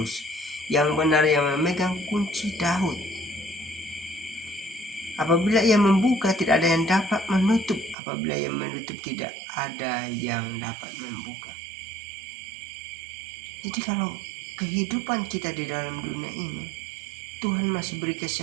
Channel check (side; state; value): left; drops out; at 8.0 s